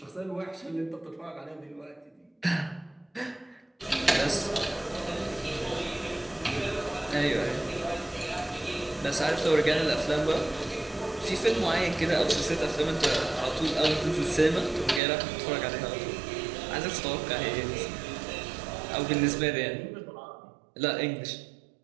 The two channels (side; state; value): left; drops out; at 15.0 s